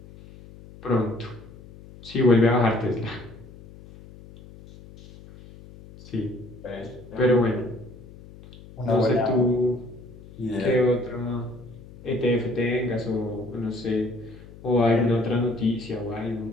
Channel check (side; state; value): left; noise; hum, 19 dB below the sound